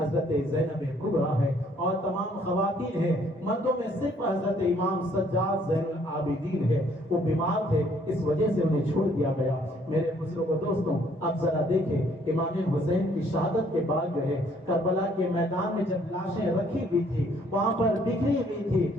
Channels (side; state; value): both; normal; correlation 0.63